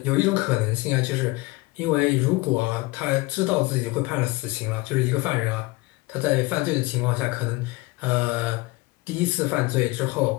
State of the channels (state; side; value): quieter; right; 22.2 dB